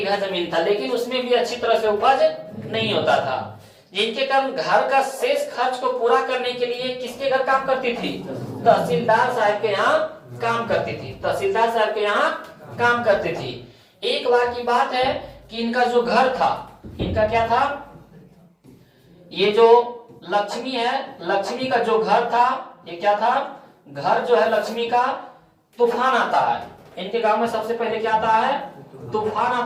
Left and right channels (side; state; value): both; identical; correlation 1.00